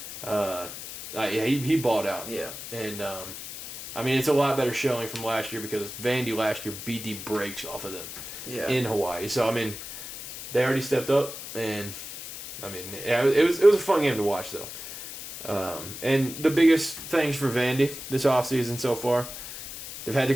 He balled out. Yeah. And I mean, it's a lot better showing from last year because Vandy last year beat the brakes off of them in Hawaii. So I mean, they already stepped up, and I mean, yeah, it was a fun game to watch though. And the biggest things for Vandy this offseason so far, they've had the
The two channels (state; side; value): noise; left; hiss, 10 dB below the sound